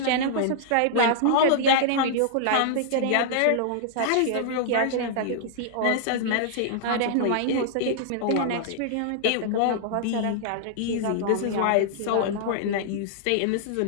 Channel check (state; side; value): different; both; correlation -0.01